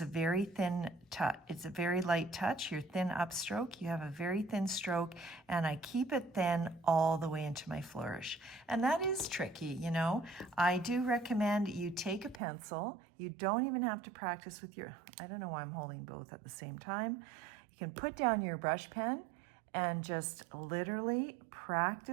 a very thin touch. It's a very light touch. Your thin upstroke, you have a very thin stroke, and I keep it thin all the way into my flourish. And that is tricky, I do recommend you take a pencil. You don't even have to practice with I don't know why I'm holding both at the same time. You can put down your brush pen and just literally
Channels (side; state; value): left; drops out; at 12.4 s